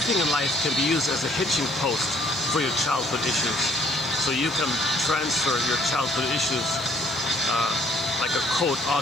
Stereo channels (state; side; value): noise; left; hiss, 25 dB below the sound